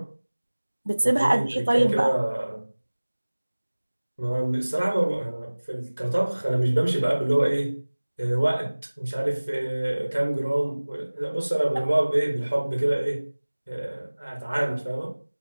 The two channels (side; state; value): both; inverted; correlation -1.00